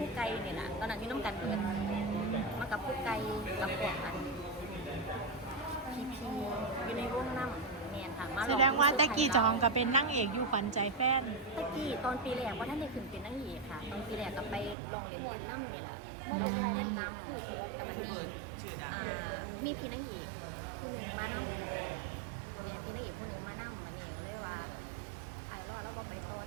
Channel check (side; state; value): left; drops out; at 14.8 s